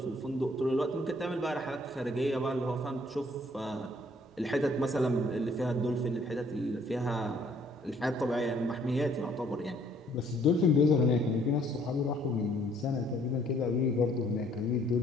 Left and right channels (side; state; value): both; normal; correlation 0.62